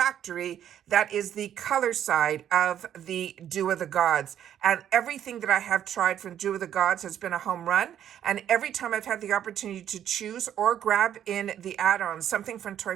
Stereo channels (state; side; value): quieter; left; 10.2 dB